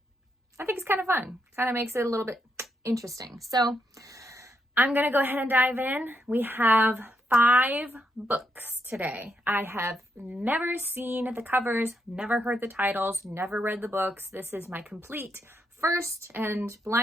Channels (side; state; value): both; normal; correlation 0.79